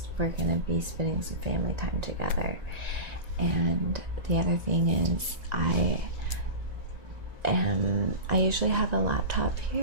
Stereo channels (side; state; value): left; late; 1.3 ms